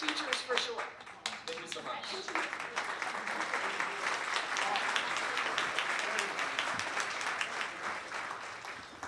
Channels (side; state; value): both; identical; correlation 1.00